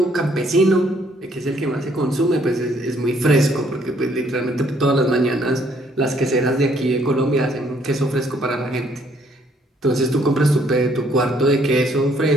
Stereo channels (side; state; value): both; normal; correlation 0.66